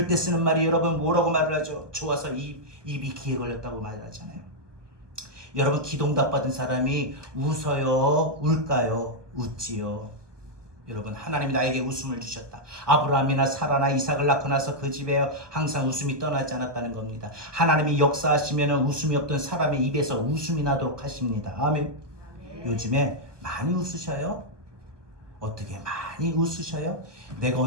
때 쓰는 말이 여러분 뭐라고 말을 하죠? 좋아서 입이 귀에 걸렸다고 말을 하잖아요. 여러분, 기도응답 받은 사람이 웃어요? 울까요? 웃지요. 여러분, 하나님이 나에게 웃음을 주셨다. 아브라함이나 사라나 이삭을 낳고 나서 그 집에 항상 웃음이 떠나지 않았다는 겁니다. 하나님이 역사하시면 웃음이 없던 사람의 입에서 웃음이 나도록 하십니다. 아멘. 요즘에 많이 웃으셔요? 어떻게 많이 웃으셔요? 내가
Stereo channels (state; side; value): late; left; 1.2 ms